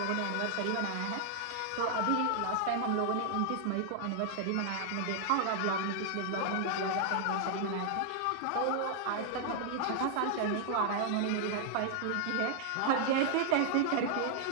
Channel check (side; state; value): both; different; correlation -0.01